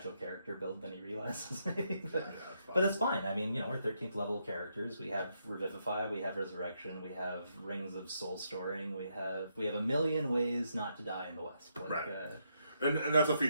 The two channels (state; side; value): inverted; both; correlation -0.78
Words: character build than he realizes, maybe. But it's fine. I mean, we're 13th level characters. We have Revivify, we have Resurrection, we have Rings of Soul Storing, we have a million ways not to die in the West. Right. And that's a